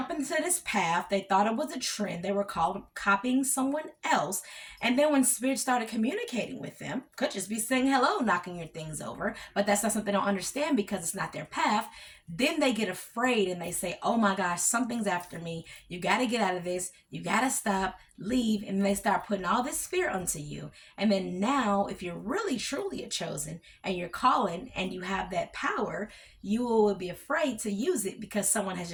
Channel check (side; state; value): both; identical; correlation 1.00